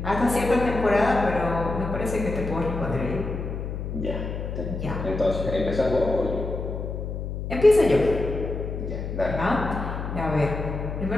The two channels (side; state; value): left; noise; hum, 5 dB below the sound